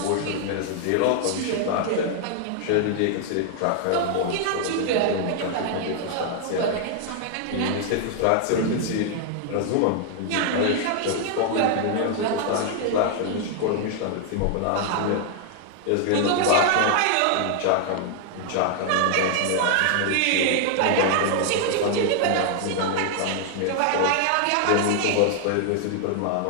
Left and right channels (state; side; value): different; both; correlation 0.00